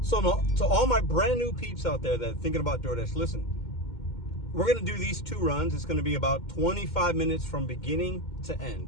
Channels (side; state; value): right; late; 2.1 ms